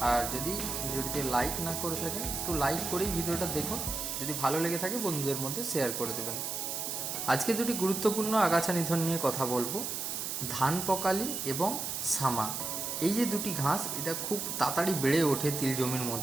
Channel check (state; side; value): noise; right; hiss, 3 dB below the sound